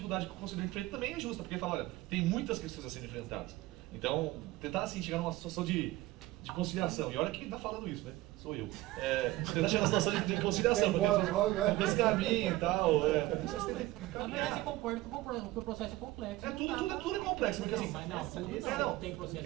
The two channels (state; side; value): quieter; left; 18.1 dB